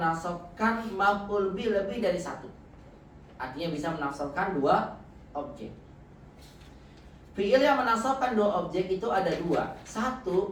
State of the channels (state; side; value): identical; both; correlation 1.00